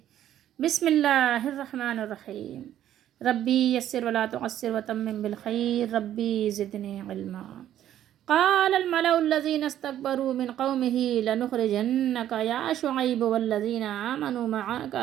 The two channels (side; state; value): left; quieter; 11.6 dB